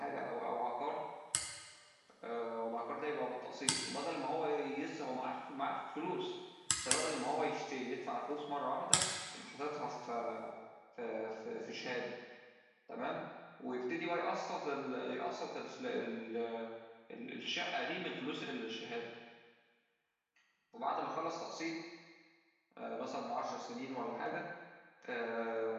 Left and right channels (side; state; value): both; identical; correlation 1.00